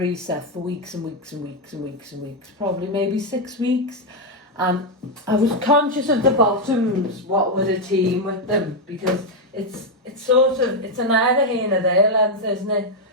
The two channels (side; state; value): both; normal; correlation 0.03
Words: set for weeks and weeks and weeks and weeks and weeks, probably maybe 6 weeks, and I was conscious of the bottoms, what were the team with them, because it's sort of, it's a neither here nor there length, isn't it?